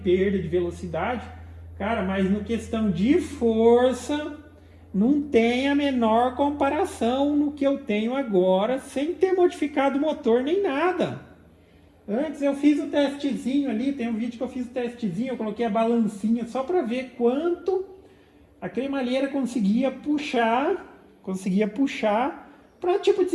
de velocidade. Cara, mas no questão de força, não tem a menor comparação no que eu tenho agora, sem ter modificado o motor nem nada. Antes eu fiz o testezinho ali, tem um vídeo que eu fiz o testezinho, eu coloquei a balancinha só para ver quanto a cremalheira conseguia puxar para tipo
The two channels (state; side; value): identical; both; correlation 1.00